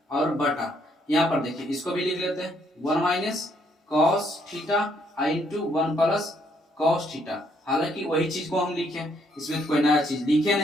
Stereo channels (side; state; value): both; normal; correlation 0.70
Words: और बटा, यहाँ पर देखिए इसको भी लिख लेते हैं 1 minus cos theta into 1 plus cos theta. हालांकि वही चीज को हम लिखे, इसमें कोई नया चीज लिखे